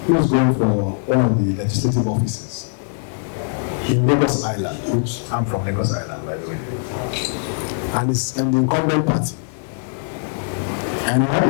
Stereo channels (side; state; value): right; silent; digital silence